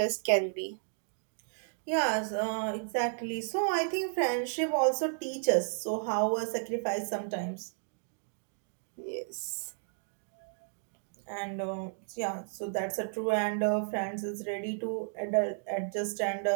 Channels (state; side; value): silent; left; digital silence